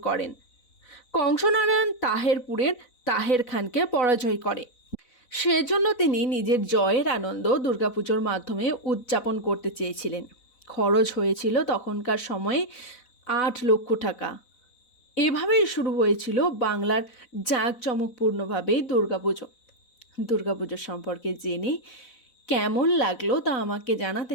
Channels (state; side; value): late; right; 4.0 ms